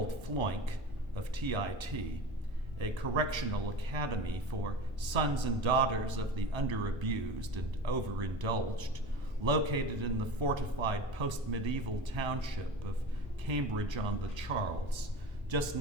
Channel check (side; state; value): both; normal; correlation 0.32